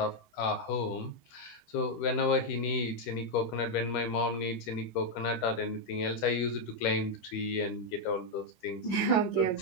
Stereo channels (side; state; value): right; late; 13 ms